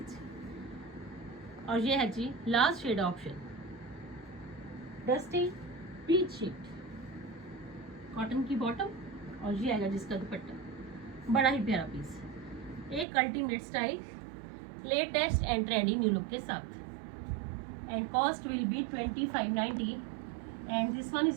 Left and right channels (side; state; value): left; drops out; at 13.1 s